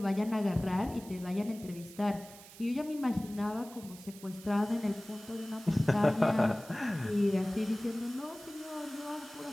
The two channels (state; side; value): noise; right; hiss, 18 dB below the sound